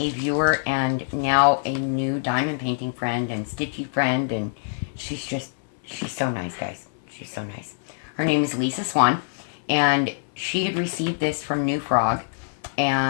viewer and now a new diamond painting friend and stitchy friend, and she's so nice, guys. She's so nice. Her name is Lisa Swan, and she had received this from New Frog,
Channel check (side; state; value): right; silent; 62 dB below the other